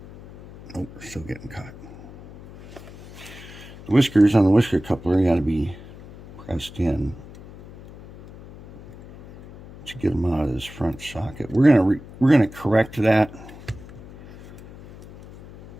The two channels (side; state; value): left; noise; hum, 18 dB below the sound